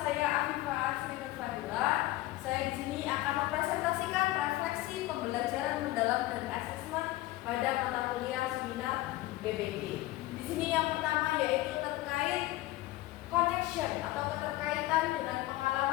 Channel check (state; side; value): quieter; right; 17.4 dB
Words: Afifah Asrinur Fadila. Saya di sini akan mempresentasikan refleksi pembelajaran mendalam dan asesmen pada mata kuliah seminar BPB. Di sini yang pertama yaitu terkait connection atau keterkaitan dengan